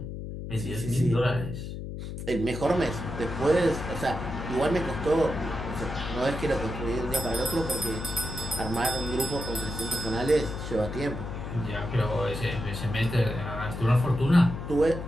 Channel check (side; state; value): left; noise; hum, 7 dB below the sound